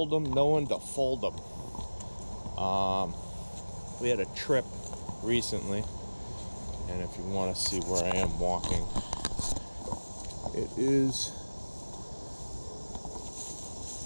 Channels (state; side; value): inverted; both; correlation -1.00